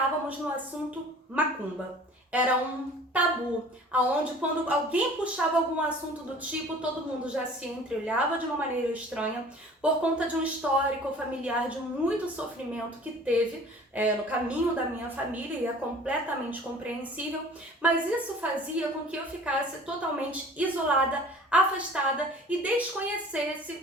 no assunto macumba. Era um tabu, aonde quando alguém puxava algum assunto do tipo, todo mundo já se entreolhava de uma maneira estranha, por conta de um histórico familiar de muito sofrimento que teve no caminho da minha família, e é completamente compreensível, mas isso fazia com que eu ficasse totalmente isolada, afastada e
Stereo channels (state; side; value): normal; both; correlation 0.47